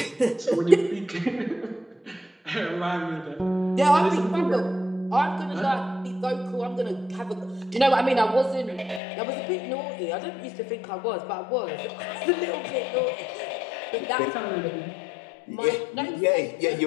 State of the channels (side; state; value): right; drops out; at 9.0 s